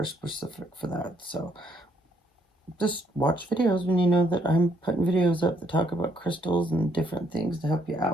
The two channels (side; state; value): both; normal; correlation 0.70